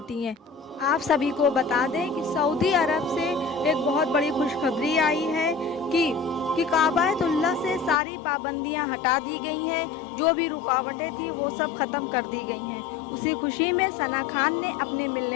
हैं। आप सभी को बता दें कि सऊदी अरब से एक बहुत बड़ी खुशखबरी आई है कि काबातुल्लाह से सारी पाबंदियां हटा दी गई हैं। जो भी रुकावटें थी वो सब ख़त्म कर दी गई हैं। उसी खुशी में सना खान ने अपने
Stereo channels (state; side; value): drops out; right; at 8.0 s